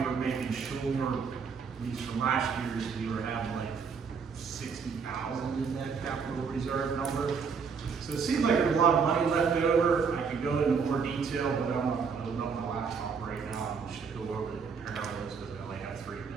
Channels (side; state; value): left; quieter; 5.7 dB